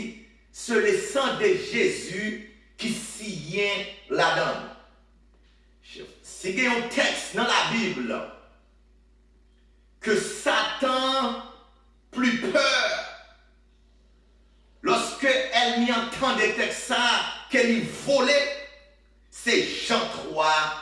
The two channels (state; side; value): identical; both; correlation 1.00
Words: sur le sang de Jésus qui signe la donne. Si il y a un texte dans la Bible que Satan plus peur lorsque elle m'y entend des textes qu'elle y volait, c'est Jean 3,